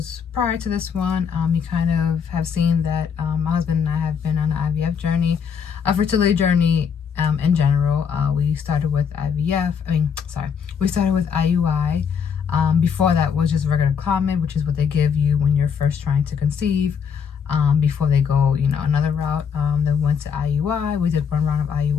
prior to this one, you kind of have seen that my husband and I have been on an IVF journey, a fertility journey in general. We started with we started with IUI. Before that was just regular Clomid, which is what they give you when you're first trying to conceive. Before they go, another route. Then went to IUI. We did one round of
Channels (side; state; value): right; quieter; 6.9 dB